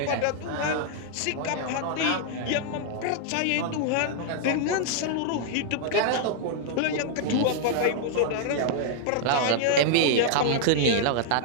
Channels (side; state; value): both; different; correlation -0.01